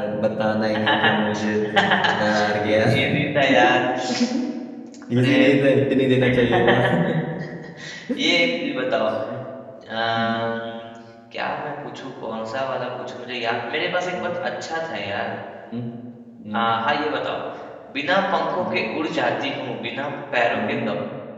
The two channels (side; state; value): both; identical; correlation 1.00